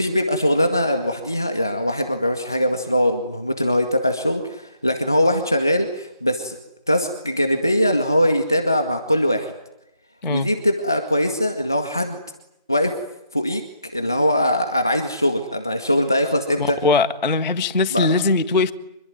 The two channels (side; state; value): both; inverted; correlation -0.69